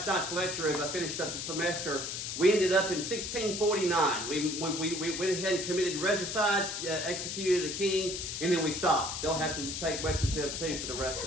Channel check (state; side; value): noise; left; hiss, 4 dB below the sound